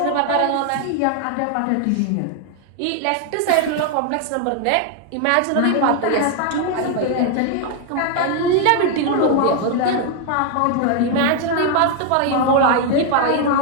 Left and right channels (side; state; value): both; different; correlation 0.00